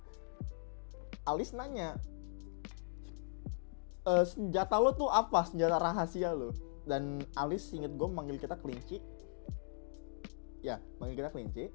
Alis nanya, senjata lo tuh apa? Senjata rahasia lo. Dan Alis inget gue manggil kita kelinci. Ya, manggil kita kelinci.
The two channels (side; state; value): right; silent; digital silence